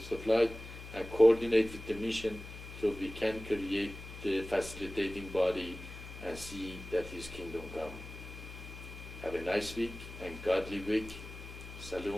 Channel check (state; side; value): noise; left; hum, 13 dB below the sound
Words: of light, and coordinate with the mission so we can create the facilitating body and see that His kingdom come. Have a nice week and godly week.